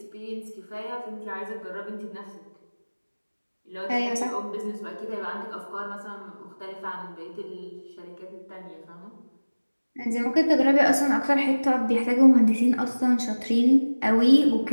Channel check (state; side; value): inverted; both; correlation -1.00